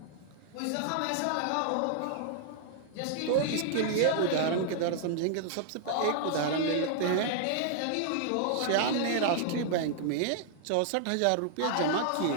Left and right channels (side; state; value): both; different; correlation -0.01